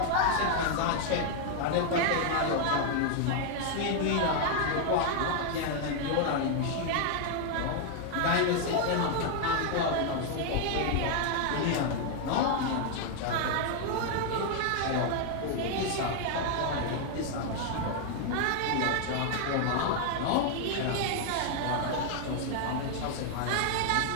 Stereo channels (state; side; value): different; both; correlation 0.00